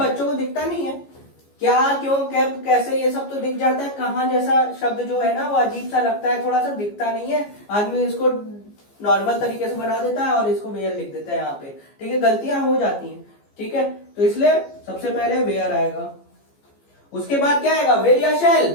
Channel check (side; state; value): right; late; 14 ms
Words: को दिखता नहीं है, क्या क्यों कैसे ये सब तो दिख जाता है, कहां जैसा शब्द जो है ना वो अजीब सा लगता है, थोड़ा सा दिखता नहीं है, आदमी इसको नॉर्मल तरीके से बना देता है और इसको वेयर लिख देता है यहाँ पे, ठीक है, गलतियां हो जाती हैं, ठीक है। तो इसलिए सबसे पहले वेयर आएगा, उसके बाद क्या आएगा, विल या शैल,